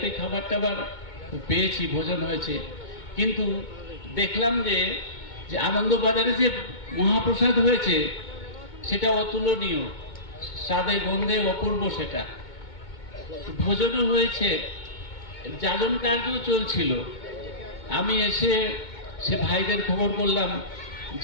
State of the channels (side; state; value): right; late; 2.2 ms